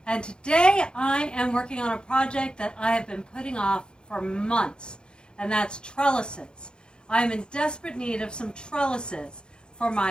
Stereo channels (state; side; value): late; right; 0.049 ms